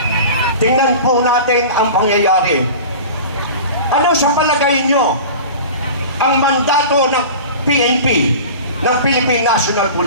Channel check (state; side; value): inverted; both; correlation -0.36